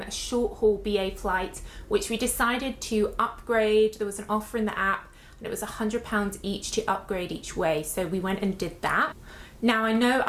short haul BA flight, which we decided to upgrade. There was an offer in the app and it was £100 each to upgrade each way. So we went and did that. Now I know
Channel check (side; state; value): both; identical; correlation 1.00